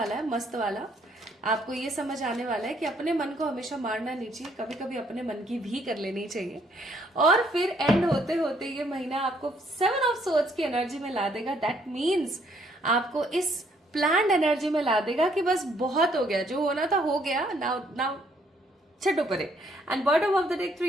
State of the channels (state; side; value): normal; both; correlation 0.67